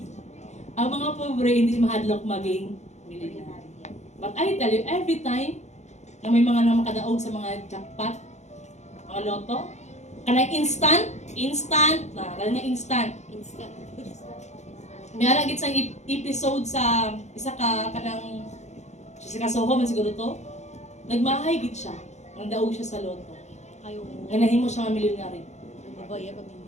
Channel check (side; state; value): right; late; 0.33 ms